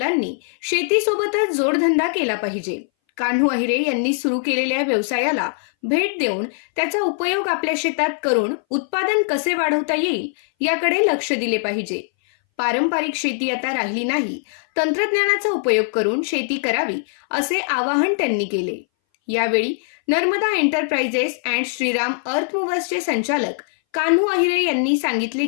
शेतीसोबतच जोडधंदा केला पाहिजे. कान्हू अहिरे यांनी सुरू केलेल्या व्यवसायाला भेट देऊन त्याचा उपयोग आपल्या शेतात करून उत्पादन कसे वाढवता येईल याकडे लक्ष दिले पाहिजे. पारंपरिक शेती आता राहिली नाही, तंत्रज्ञानाचा उपयोग करून शेती करावी असे आवाहन त्यांनी केले. यावेळी नर्मदा एंटरप्राइजेस अँड श्रीराम अर्थ मूव्हर्सचे संचालक कान्हू अहिरे यांनी सांगितले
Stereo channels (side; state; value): right; silent; 61 dB below the other